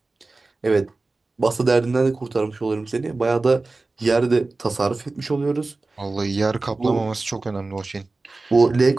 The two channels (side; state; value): left; quieter; 3.4 dB